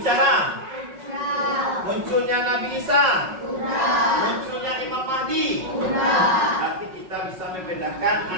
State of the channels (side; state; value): left; late; 5.4 ms